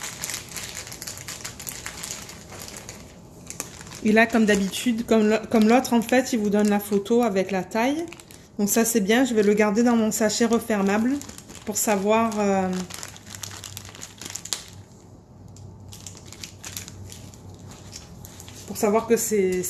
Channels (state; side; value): identical; both; correlation 1.00